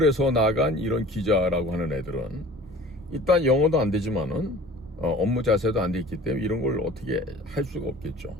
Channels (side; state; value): both; normal; correlation 0.45